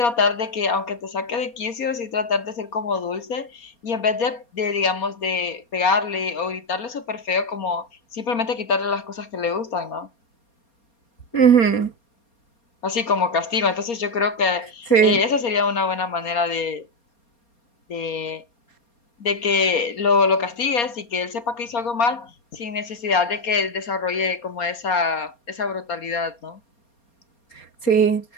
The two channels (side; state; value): right; late; 4.3 ms